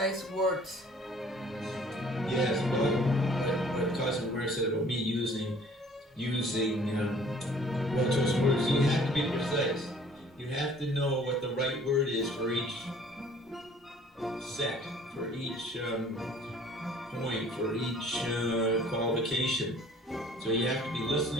words. Yes, well, what Cosmo Ware said about me using well-chosen words, you have to be precise. You have to know what the right word is for each set, for each point, for each qualification. So you have to be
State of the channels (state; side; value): normal; both; correlation 0.54